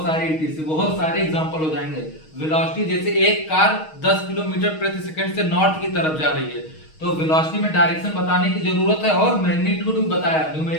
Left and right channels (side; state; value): right; late; 6.4 ms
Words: सारे ETC, बहुत सारे एग्जांपल हो जाएंगे। वेलोसिटी जैसे एक कार 10 किलोमीटर प्रति सेकंड से नॉर्थ की तरफ जा रही है, तो वेलोसिटी में डायरेक्शन बताने की जरूरत है, और मैग्नीट्यूड भी बताया,